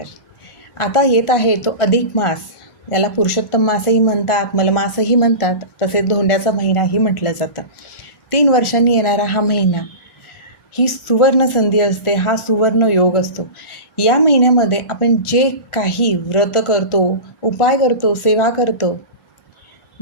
आता येत आहे तो अधिक मास. याला पुरुषोत्तम मासही म्हणतात, मलमासही म्हणतात, तसेच धोंड्याचा महिनाही म्हटलं जातं. 3 वर्षांनी येणारा हा महिना ही सुवर्ण संधी असते, हा सुवर्ण योग असतो. या महिन्यामध्ये आपण जे काही व्रत करतो, उपाय करतो, सेवा करतो,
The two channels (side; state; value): right; late; 1.4 ms